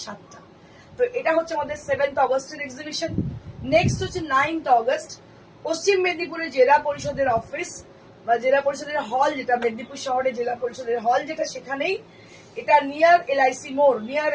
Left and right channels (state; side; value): identical; both; correlation 1.00